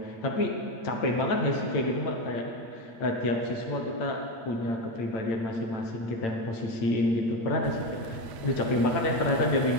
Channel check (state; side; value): late; right; 8.1 ms